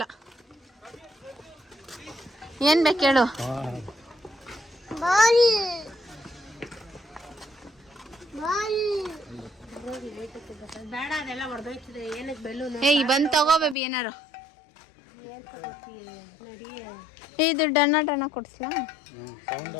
ಏನ್ ಬೇಕು ಹೇಳು. ಬೇಡ ಅದೆಲ್ಲ ಹೊಡೆದೋಯ್ತದೆ. ಏನಕ್ಕೆ ಬೆಲೂನು? ಬಂದ್ ತಗೋ ಬೇಬಿ ಏನಾರು. ಇದು ಡಣ್ಣ ಕೊಡ್ಸ್ಲಾ?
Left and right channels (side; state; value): right; drops out; at 13.8 s